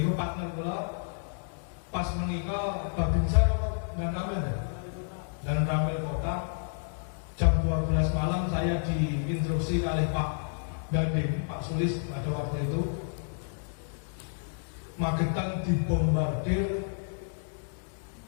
partner kula pas menika Babinsa dan Ramil Kota jam 12 malam saya diinstruksi oleh Pak Dandim, Pak Sulis pada waktu itu Magetan dibombardir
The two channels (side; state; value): right; silent; digital silence